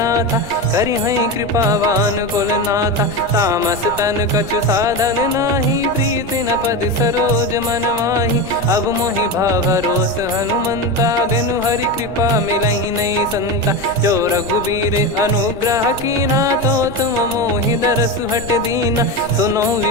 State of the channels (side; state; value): right; noise; rumble, 14 dB below the sound